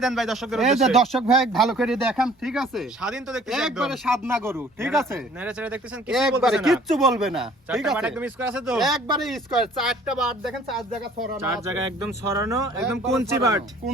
দেন ভাই দর্শকদের এই যে উদ্দেশ্যে। দর্শক ভাই ভালো করে দেখান, ঠিক আছে? স্বাধীন তো দেখতেছি একদম। একবারে সাদনা গরু, ঠিক আছে? নেড়ে চেড়ে দেখতেছেন, কিছু একবারে বলতেছে না। কিচ্ছু বলবে না, ঠিক চারটা বাট আছে? একদম স্কয়ার আছে তো? একবারে স্কয়ার, চারটা বাট দেখেন, চার জায়গা ছড়ানো 4 আছে। জায়গায় একদম ছড়ানো, একদম একবারে কুঞ্চি ছড়ানো, বাট।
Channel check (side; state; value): both; normal; correlation 0.54